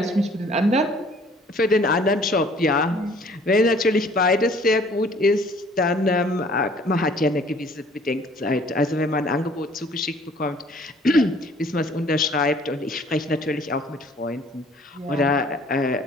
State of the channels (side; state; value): both; normal; correlation 0.56